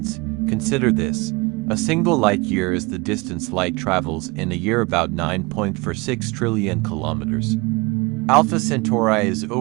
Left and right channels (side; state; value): left; quieter; 25.8 dB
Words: consider this. A single light-year is the distance light travels in a year, about 9.46 trillion kilometers. Alpha Centauri is